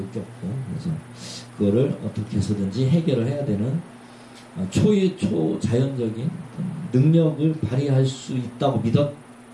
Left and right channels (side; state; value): both; identical; correlation 1.00